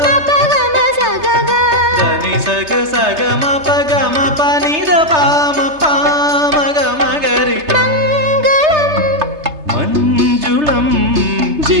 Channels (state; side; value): late; left; 3.3 ms